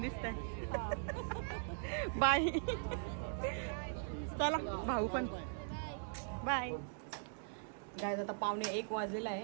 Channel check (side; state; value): left; silent; digital silence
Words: बाय. चला भाऊ पण बाय. गाईज आता 12:45 वाजलेला आहे.